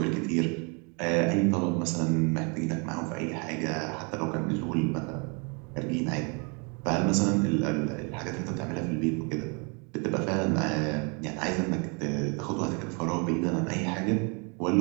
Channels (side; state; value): left; quieter; 34.1 dB